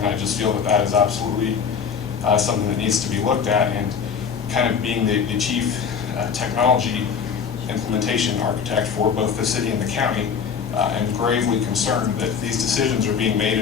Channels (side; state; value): right; quieter; 6.7 dB